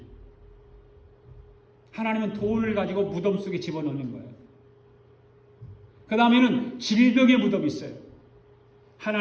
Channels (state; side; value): identical; both; correlation 1.00